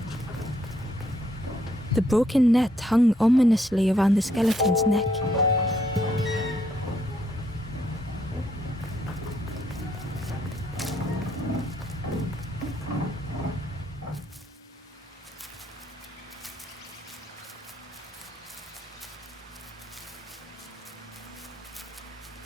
The broken net hung ominously around the skeleton's neck.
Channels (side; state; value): both; normal; correlation 0.72